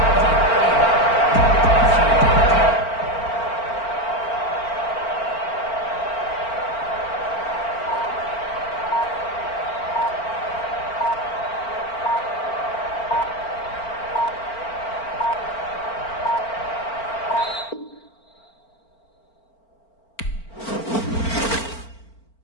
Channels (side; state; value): right; late; 4.4 ms